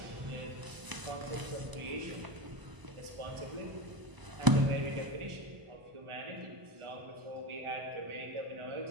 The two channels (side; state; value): left; late; 1.0 ms